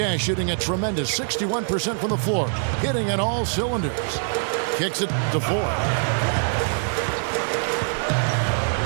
shooting a tremendous 61% from the floor, hitting on all cylinders. Kicks it to Ford.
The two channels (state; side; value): silent; left; 63 dB below the other